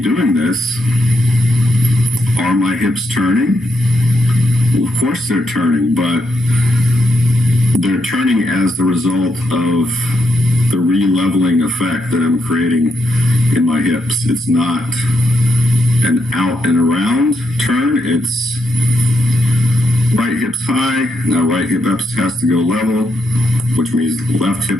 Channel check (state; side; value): normal; both; correlation 0.80